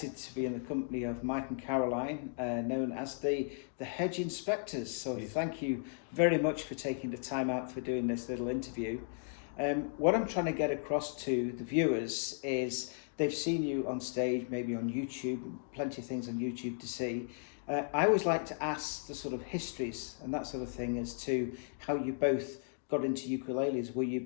to be in the company of Mike and Caroline, known as the Hedge Inspectors. So, thank you very much for taking the time out for doing this little interview. What I'm trying to get across to the viewers is they've seen you on stage, maybe on YouTube, plenty of things on YouTube to see. I always like to ask the sort of histories and that sort of thing as to how you both got into ukuleles. Were you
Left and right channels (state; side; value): silent; right; digital silence